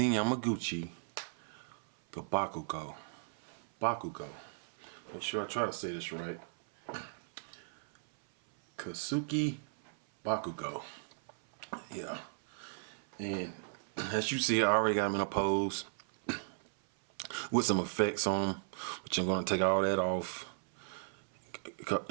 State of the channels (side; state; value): left; silent; 54 dB below the other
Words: Yamaguchi Bakugo. Make sure I try to say this right. Kasuki Bakugo. Yeah. And as you see, I already got him in a pose with some effects on him, which I'm going to take all that off.